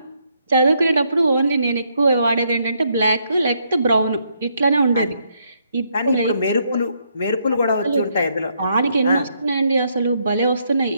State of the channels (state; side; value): inverted; both; correlation -0.74